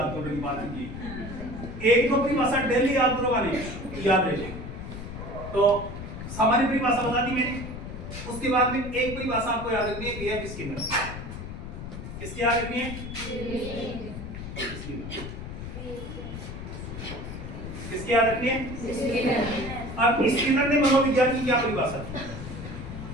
करने की बात कीजिए। एक दो परिभाषा डेली याद करोगा नहीं, याद रहेगी। तो सामान्य परिभाषा बता दी मैंने, उसके बाद में एक परिभाषा आपको याद रखनी है, बीएफ स्किनर। किसकी याद रखनी है? किसकी याद रखनी है? अब स्किनर ने मनोविज्ञान की क्या परिभाषा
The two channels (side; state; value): left; noise; rumble, 9 dB below the sound